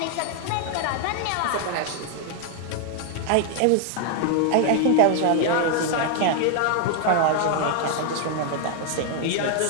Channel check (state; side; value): different; both; correlation 0.00